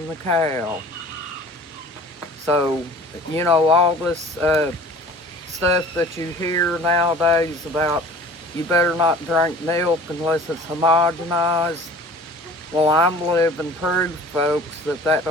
the cow. So, all this stuff that you hear nowadays about you better not drink milk unless it's homogenized. Well, I'm living proof, folks, that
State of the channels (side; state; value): both; normal; correlation 0.45